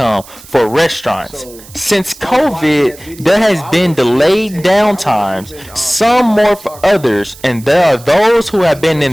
for restaurants. Since COVID, there has been delayed downtimes, some more for others, and there are those who have been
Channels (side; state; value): right; noise; hiss, 20 dB below the sound